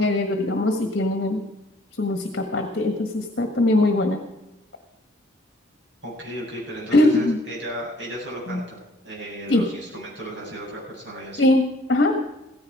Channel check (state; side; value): normal; both; correlation 0.59